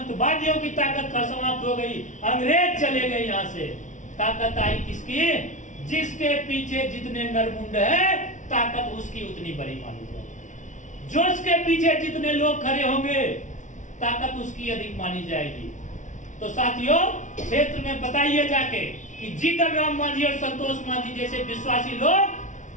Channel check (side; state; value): right; late; 0.36 ms